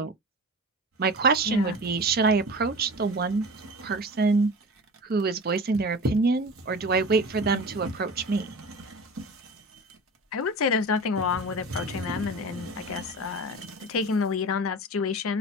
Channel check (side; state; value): both; normal; correlation 0.33